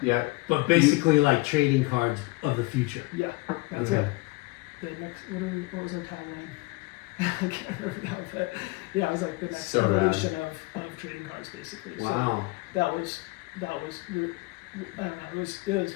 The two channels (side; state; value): right; quieter; 23.0 dB